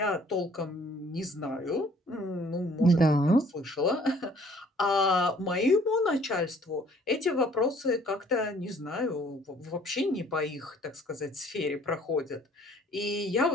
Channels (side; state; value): both; normal; correlation 0.57